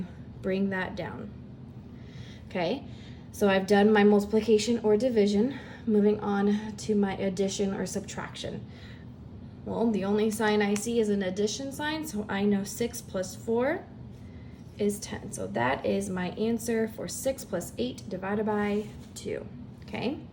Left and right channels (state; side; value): identical; both; correlation 1.00